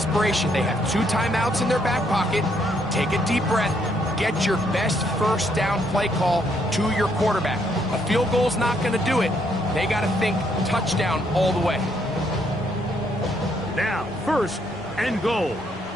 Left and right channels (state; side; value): normal; both; correlation 0.72